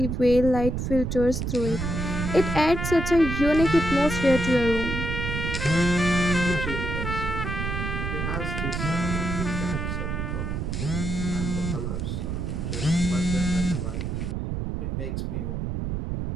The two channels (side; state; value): right; noise; rumble, 2 dB below the sound